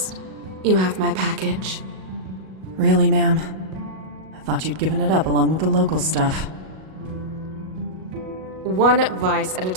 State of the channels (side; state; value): left; late; 38 ms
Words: You have my package. Really, ma'am? I thought you'd given it up along with the local stuff. One vice at a